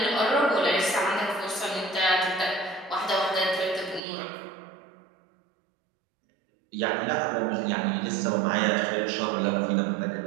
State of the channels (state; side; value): drops out; left; at 4.0 s